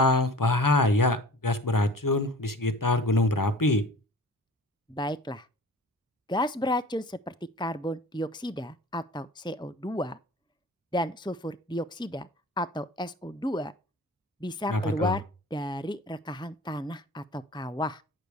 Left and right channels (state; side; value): normal; both; correlation 0.42